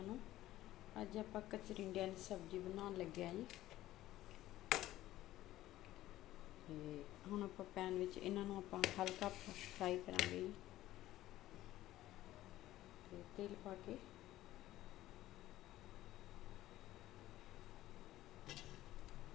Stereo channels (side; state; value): right; quieter; 15.0 dB